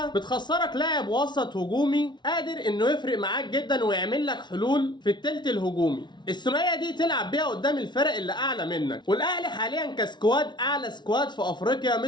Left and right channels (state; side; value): late; right; 0.21 ms